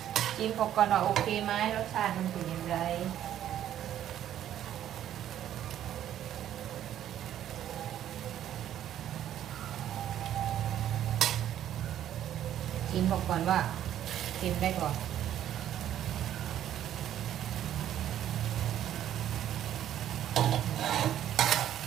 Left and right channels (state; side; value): quieter; left; 11.2 dB